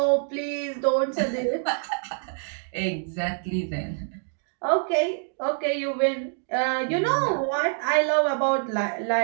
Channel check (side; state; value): left; silent; 61 dB below the other